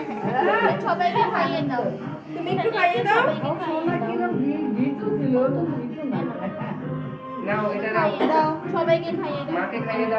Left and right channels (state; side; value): identical; both; correlation 1.00